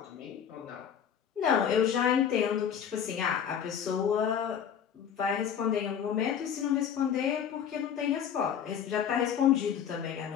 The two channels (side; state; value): right; quieter; 8.4 dB